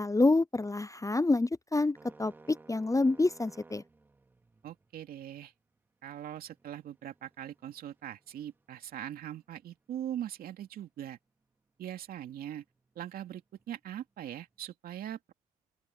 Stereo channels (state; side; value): normal; both; correlation 0.85